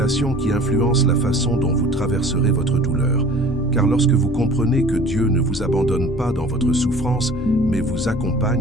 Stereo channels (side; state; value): both; normal; correlation 0.46